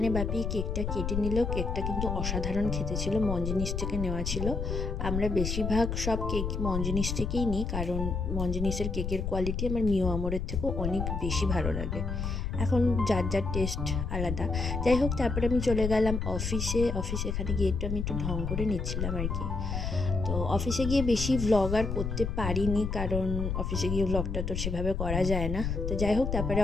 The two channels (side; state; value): left; noise; rumble, 2 dB below the sound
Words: বাপি কেকটা কেটে নিল। কেকটা কিন্তু অসাধারণ খেতে ছিল, মঞ্জিনিস থেকে নেওয়া ছিল। আমরা বেশিরভাগ সব কেক মঞ্জিনিস থেকেই নিই, কারণ মঞ্জিনিসের কেকের কোয়ালিটি আমার মিও আমরের থেকেও অনেক বেশি ভালো লাগে। এখন যার যার টেস্ট আলাদা। যাই হোক, তারপরে আমি চলে গেলাম অফিসে। এখানে গিয়ে আমি একটু ঢং করে নিচ্ছিলাম আর কি। তো অফিসে গিয়ে বেশি ভ্লগ আর করতে পারিনি, কারণ অফিসে গিয়ে ভ্লগটা তো সেভাবে করা যায় না। তো যাই হোক, তারপরে